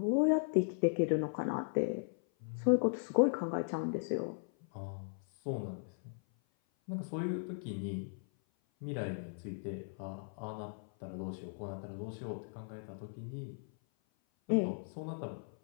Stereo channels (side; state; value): right; silent; 53 dB below the other